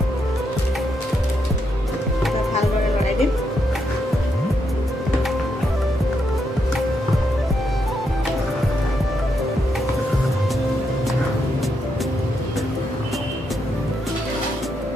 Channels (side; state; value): both; normal; correlation 0.80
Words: ভালদৰে লৰাই দিম।